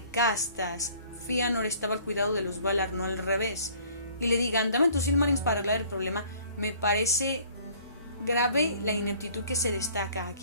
castas, Fëanor estaba al cuidado de los Valar, no al revés, y le digan, dame tus Silmarils para arreglar el problema. Me parece grave la ineptitud que se destaca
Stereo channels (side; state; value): both; inverted; correlation -0.55